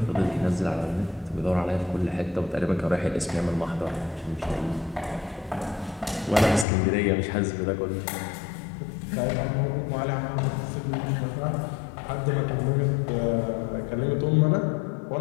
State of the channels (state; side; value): drops out; right; at 6.7 s